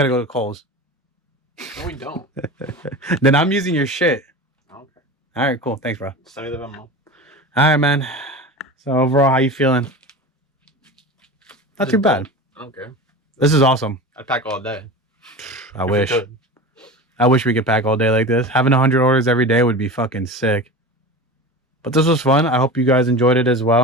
to go to Kohl's. No, we don't. Then I'm using your shit. Okay. All right, cool. Thanks, bro. Send me the memo. All right, man. So overall, how you feeling? Not too bad. I don't care. This is awesome. I'd pack all day. I wish. I wish we could pack all day like this. Having 100 orders every day would be fucking sick. But this was fun. I hope you guys enjoyed it as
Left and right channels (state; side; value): normal; both; correlation 0.30